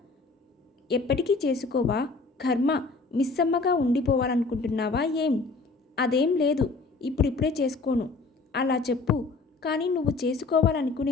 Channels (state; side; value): quieter; right; 3.9 dB